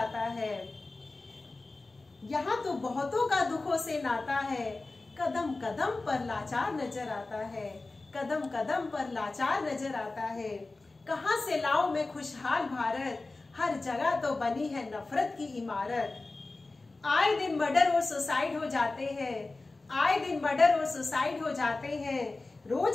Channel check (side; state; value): right; quieter; 3.4 dB